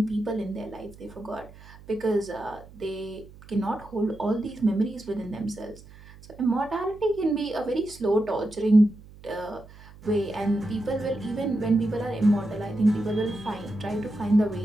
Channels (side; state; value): right; noise; hum, 20 dB below the sound